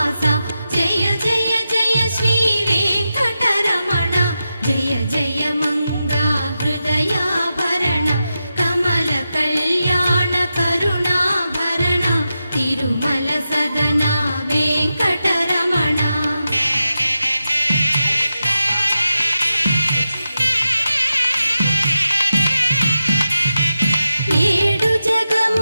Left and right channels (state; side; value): inverted; both; correlation -0.90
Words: జయ జయ జయ శ్రీ వెంకటరమణ జయ జయ మంగ హృదయాభరణ కమల కళ్యాణ కరుణాభరణ తిరుమల సదన వెంకటరమణ ఏడు